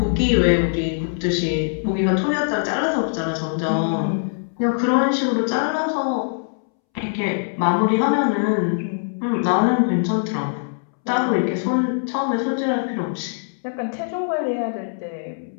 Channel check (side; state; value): right; silent; 64 dB below the other